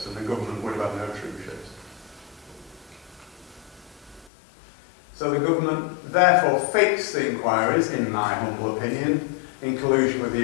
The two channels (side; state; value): right; drops out; at 4.3 s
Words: and the government would have had no troop ships. So the government therefore fixed the inquiries, in my humble opinion, in collusion with the